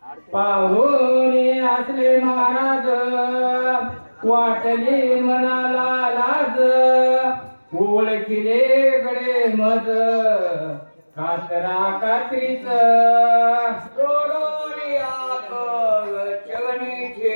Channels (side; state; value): both; inverted; correlation -1.00